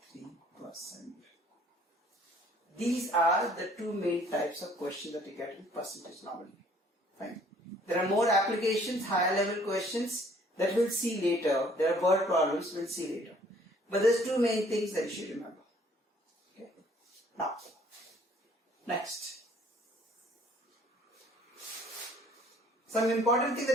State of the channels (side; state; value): both; normal; correlation 0.58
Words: These are the two main types of questions that you get in percentage normally. Fine. There are more applications, higher level questions that we'll see later. There are word problems we'll see later. But there's two main things that you should remember. Okay. Now, next. Some important thing that